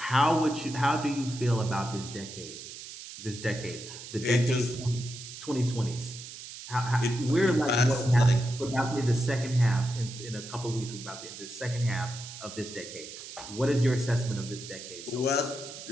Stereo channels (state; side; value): noise; right; hiss, 12 dB below the sound